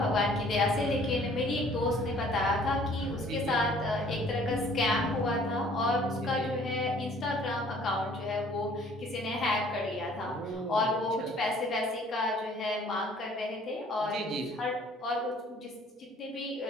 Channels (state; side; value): normal; both; correlation 0.56